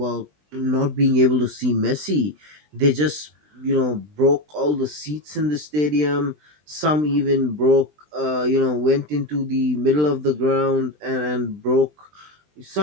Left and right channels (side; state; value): left; late; 20 ms